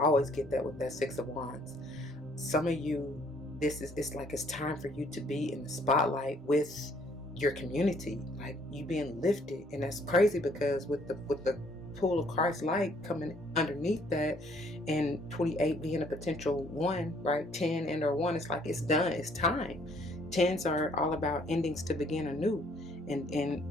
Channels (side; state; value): both; normal; correlation 0.63